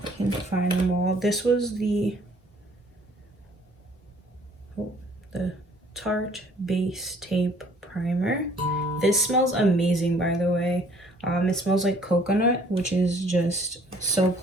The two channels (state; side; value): normal; both; correlation 0.58